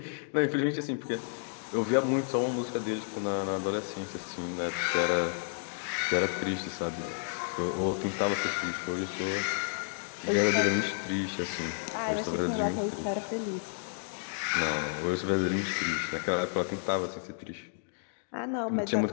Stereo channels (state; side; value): silent; right; digital silence